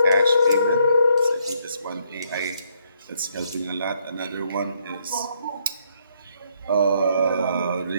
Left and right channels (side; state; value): both; inverted; correlation -0.72